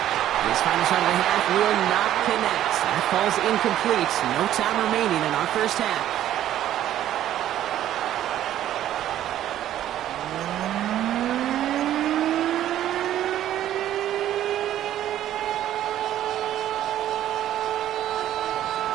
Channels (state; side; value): quieter; left; 12.1 dB